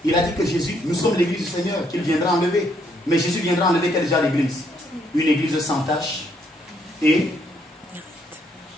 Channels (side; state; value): both; normal; correlation 0.71